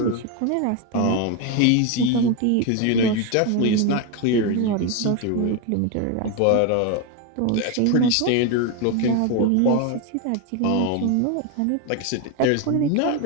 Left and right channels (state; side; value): different; both; correlation 0.02